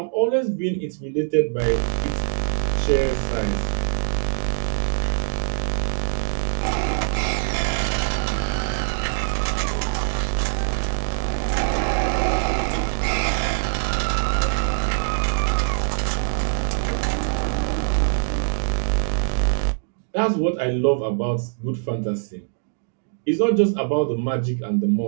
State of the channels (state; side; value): silent; left; digital silence